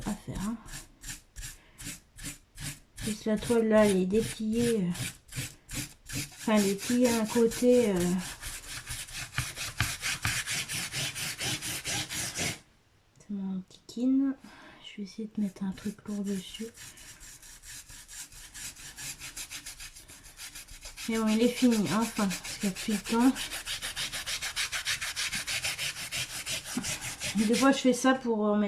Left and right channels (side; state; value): both; identical; correlation 1.00